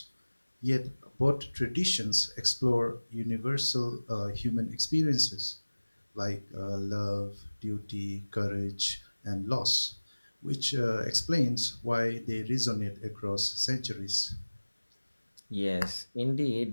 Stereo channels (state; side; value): inverted; both; correlation -1.00